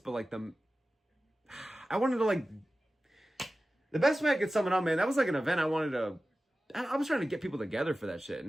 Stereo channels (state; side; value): normal; both; correlation 0.95